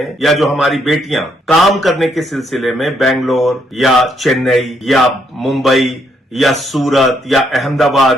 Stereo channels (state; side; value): normal; both; correlation 0.73